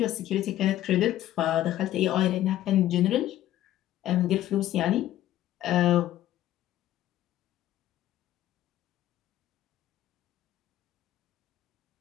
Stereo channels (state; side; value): quieter; right; 13.3 dB